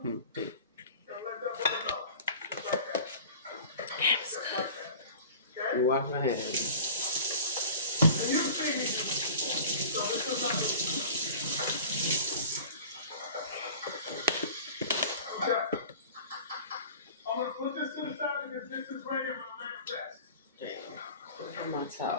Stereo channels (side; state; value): both; inverted; correlation -0.41